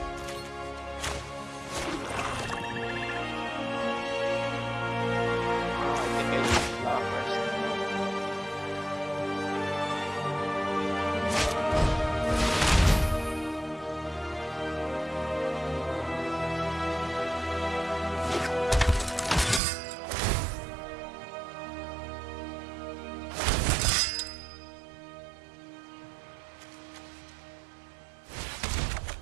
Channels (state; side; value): drops out; left; at 19.6 s